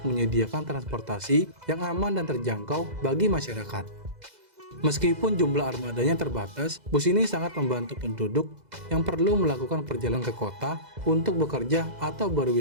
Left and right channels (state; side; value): late; left; 2.0 ms